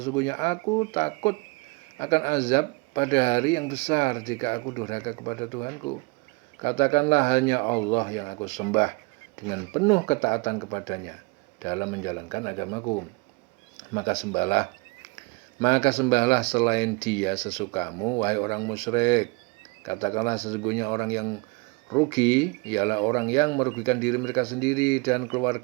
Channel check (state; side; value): quieter; left; 28.3 dB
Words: aku takut akan azab pada hari yang besar jika aku durhaka kepada Tuhanku. Katakanlah, hanya Allah yang aku sembah dengan penuh ketaatan kepadanya dalam menjalankan agamaku. Maka sembahlah selain Dia sesukamu, wahai orang musyrik. Katakanlah, sesungguhnya orang yang rugi ialah orang yang merugikan diri mereka sendiri dan